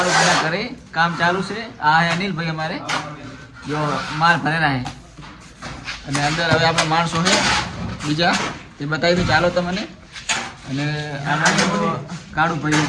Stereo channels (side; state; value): both; identical; correlation 1.00